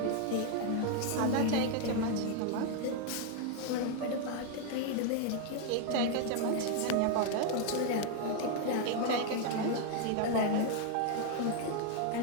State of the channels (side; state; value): both; different; correlation 0.00